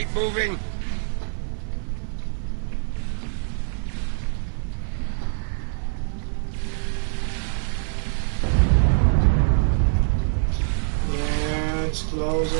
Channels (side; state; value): left; silent; 57 dB below the other